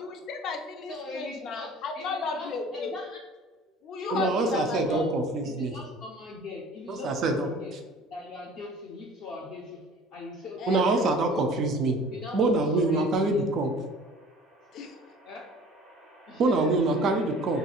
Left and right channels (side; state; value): both; normal; correlation 0.46